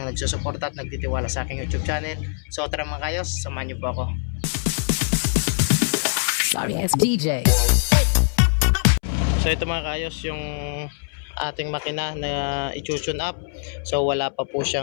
nagsusuporta at nagtitiwala sa aking YouTube channel. So tara mga kayos, samahan niyo po ako. Sorry, it's DJ. So ito mga kaayos yung ating makina na i-tune up. So wala pa po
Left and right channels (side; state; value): right; silent; 63 dB below the other